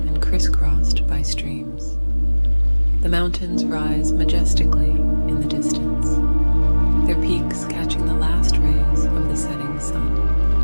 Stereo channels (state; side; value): inverted; both; correlation -1.00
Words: and crisscrossed by streams. The mountains rise majestically in the distance, their peaks catching the last rays of the setting sun.